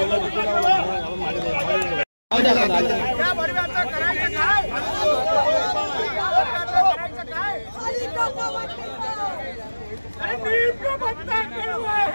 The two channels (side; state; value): both; inverted; correlation -1.00